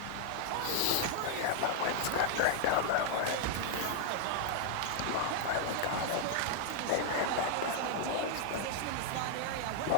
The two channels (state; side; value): different; both; correlation -0.01